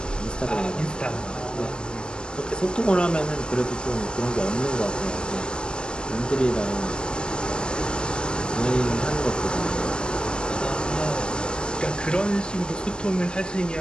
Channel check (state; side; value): late; right; 0.052 ms